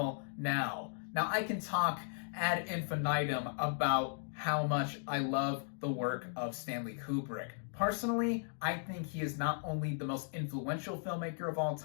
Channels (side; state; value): right; silent; digital silence